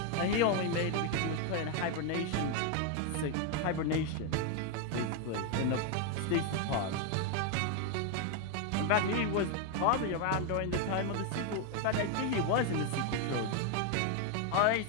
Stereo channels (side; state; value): both; different; correlation 0.01